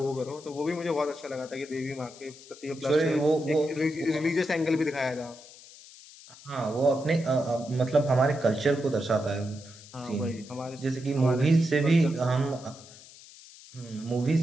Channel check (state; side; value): noise; left; hiss, 20 dB below the sound